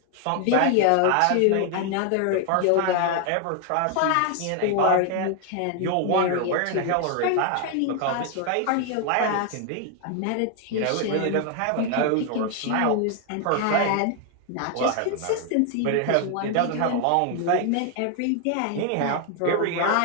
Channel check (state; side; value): different; both; correlation 0.00